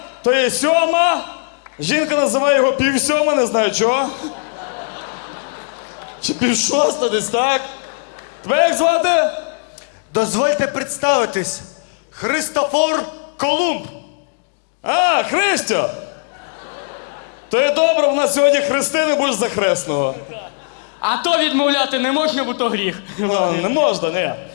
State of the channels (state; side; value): silent; right; digital silence